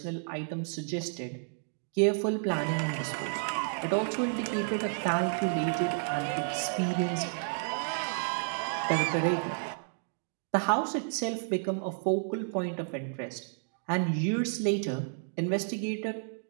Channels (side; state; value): left; silent; digital silence